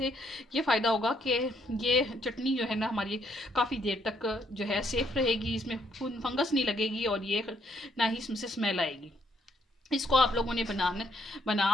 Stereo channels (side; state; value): both; normal; correlation 0.71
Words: ये फ़ायदा होगा कि ये चटनी जो है ना हमारी काफ़ी देर तक जो है सेफ़ रहेगी, इसमें फंगस नहीं लगेगी और ये ना ही इसमें से स्मेल आएगी। इसको आप लोगों ने